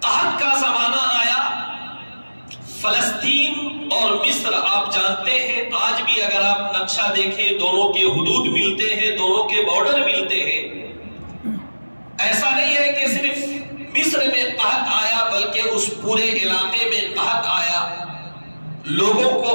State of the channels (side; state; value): both; inverted; correlation -1.00